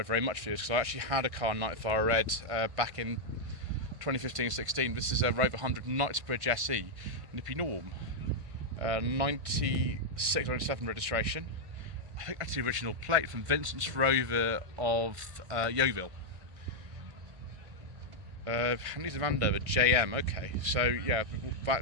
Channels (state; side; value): late; left; 1.5 ms